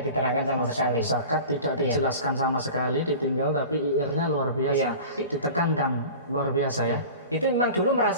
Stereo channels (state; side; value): inverted; both; correlation -0.37